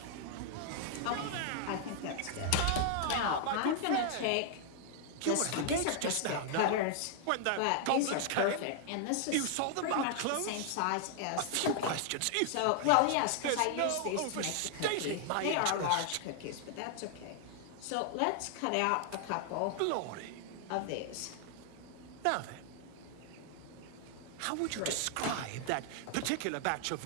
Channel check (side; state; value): both; different; correlation 0.00